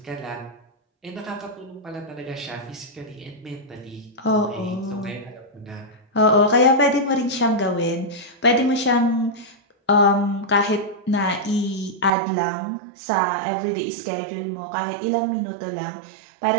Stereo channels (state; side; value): drops out; left; at 12.1 s